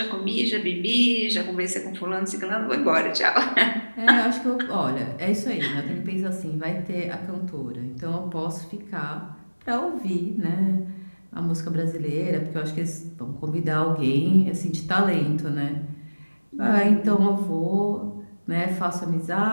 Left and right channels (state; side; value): inverted; both; correlation -1.00